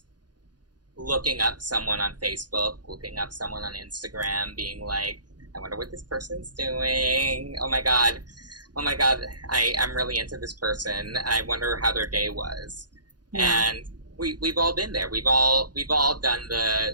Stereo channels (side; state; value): left; late; 0.69 ms